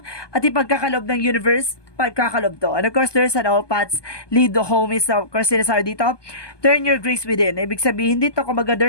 at ipagkakalob ng universe, pagkakalob to. And of course, there's an all paths lead to home is, of course, sinasabi dito, turn your grace within. Ibig sabihin dito, kumaga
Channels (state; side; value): late; right; 1.2 ms